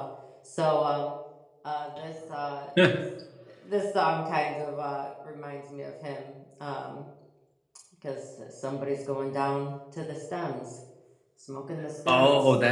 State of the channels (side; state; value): both; identical; correlation 1.00